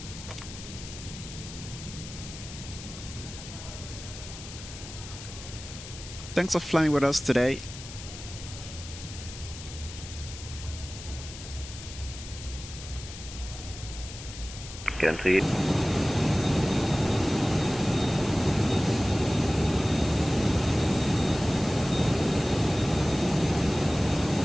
Thanks for flying with us today. KLM 380.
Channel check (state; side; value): noise; left; hiss, 13 dB below the sound